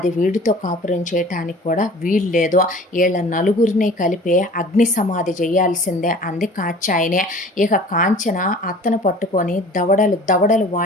వీడితో కాపురం చేయటానికి కూడా వీల్లేదు, వీళ్ళ నలుగురిని కలిపి అగ్ని సమాధి చేయాల్సిందే అంది కాచాయనే. ఇక కాంచన అత్తను పట్టుకొని దవడలు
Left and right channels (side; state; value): both; normal; correlation 0.45